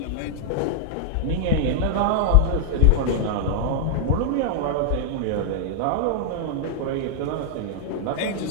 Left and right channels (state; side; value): different; both; correlation -0.01